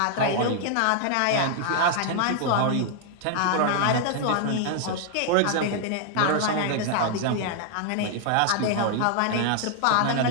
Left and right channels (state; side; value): different; both; correlation 0.00